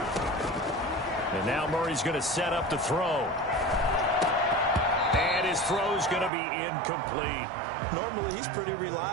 And now Murray's going to set up the throw. And his throw's going to be incomplete. Normally, he's pretty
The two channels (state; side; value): drops out; left; at 6.3 s